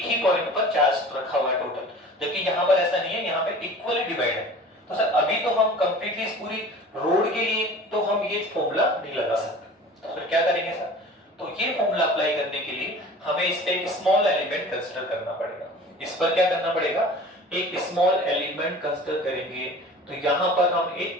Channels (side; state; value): both; normal; correlation 0.42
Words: ही पॉइंट पर चार्ज रखा हुआ है टोटल, जबकि यहाँ पर ऐसा नहीं है, यहाँ पे इक्वली डिवाइड है। तो सर अभी तो हम कंप्लीटली इस पूरी रोड के लिए तो हम ये फॉर्मूला नहीं लगा सकते। तो फिर क्या करेंगे सर, तो ये फॉर्मूला अप्लाई करने के लिए हमें इस पे एक स्मॉल एलिमेंट कंसीडर करना पड़ेगा। इस पर क्या करना पड़ेगा, एक स्मॉल एलिमेंट कंसीडर करेंगे तो यहां पर हम